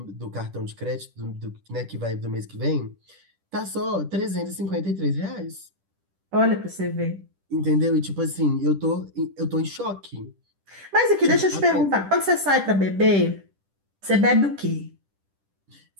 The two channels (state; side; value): late; left; 10 ms